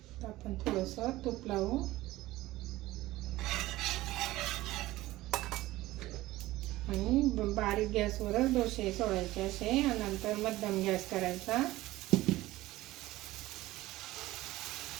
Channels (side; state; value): left; quieter; 17.3 dB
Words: आपण थोडंसं तूप लावू आणि बारीक गॅसवरच डोसे सोडायचे असे. आणि नंतर मध्यम गॅस करायचा.